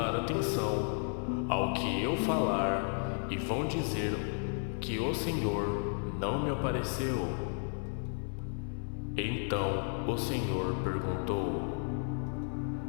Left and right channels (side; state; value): right; silent; 55 dB below the other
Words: atenção ao que eu falar e vão dizer que o Senhor não me apareceu. Então o Senhor perguntou: